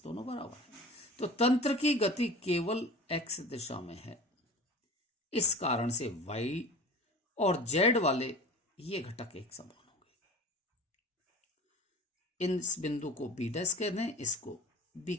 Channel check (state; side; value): normal; both; correlation 0.38